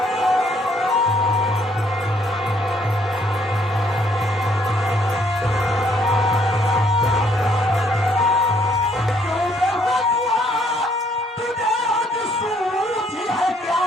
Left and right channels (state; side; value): normal; both; correlation 0.67